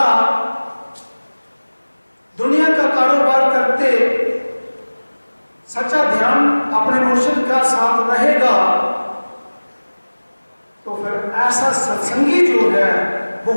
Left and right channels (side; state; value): both; inverted; correlation -1.00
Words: दुनिया का कारोबार करते सच्चा ध्यान अपने मुर्शिद का साथ रहेगा, तो फिर ऐसा सत्संगी जो है वो